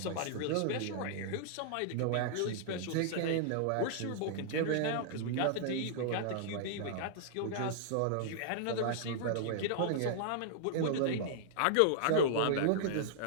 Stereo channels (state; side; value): different; both; correlation -0.01